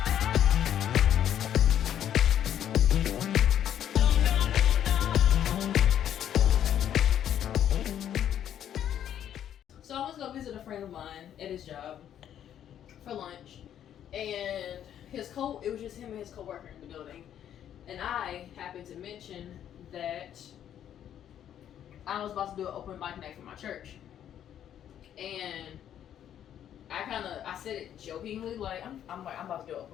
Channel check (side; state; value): right; quieter; 10.2 dB